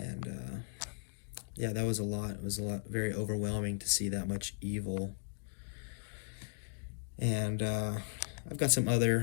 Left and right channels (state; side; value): silent; right; digital silence